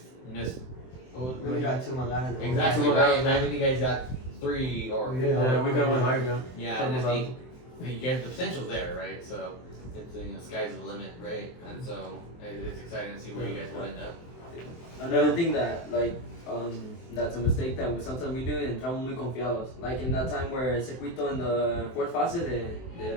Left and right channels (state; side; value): late; right; 23 ms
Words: missed. We got 2 manganas. Exactly, Two right? manganas. And I think you guys got 3 or 4. yeah, we could win higher, yeah. Yeah, and I think you guys, the potential's there, right? So it's the sky's the limit, right? And so it's exciting to see where you guys will end up. Another thing that that's a mistake that sometimes we do, entramos muy confiados. Like in that time where Circuito in the 4th fase de